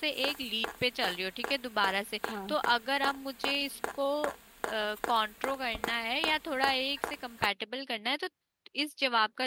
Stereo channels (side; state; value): both; identical; correlation 1.00